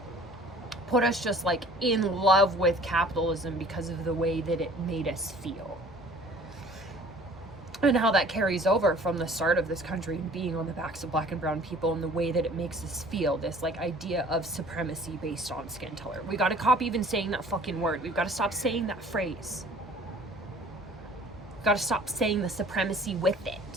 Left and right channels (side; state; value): both; normal; correlation 0.50